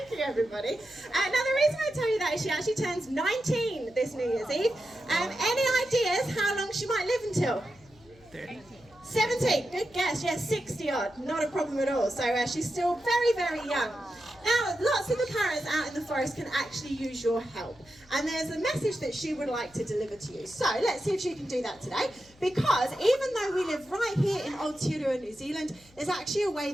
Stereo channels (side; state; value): left; noise; hum, 27 dB below the sound